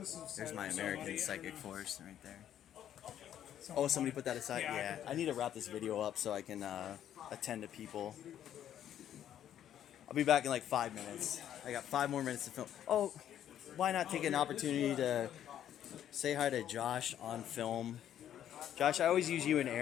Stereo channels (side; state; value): right; quieter; 10.6 dB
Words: There's my American Psychic Force right there. Oh, somebody put that aside? Yeah. I need to wrap this video up so I can attend to people. I'll be back in like 5 minutes. I got 5 more minutes to film. Oh, why not take an opportunity to say hi to Josh on film? Josh, I always use you and